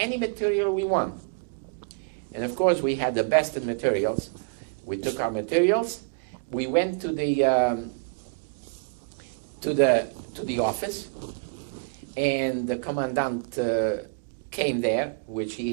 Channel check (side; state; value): left; quieter; 37.1 dB